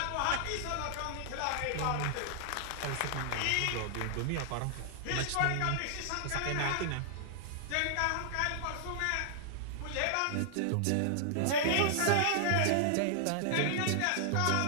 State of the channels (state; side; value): different; both; correlation -0.01